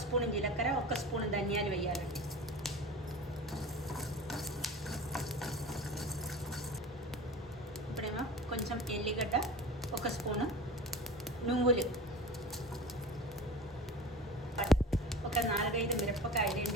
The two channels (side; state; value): both; normal; correlation 0.34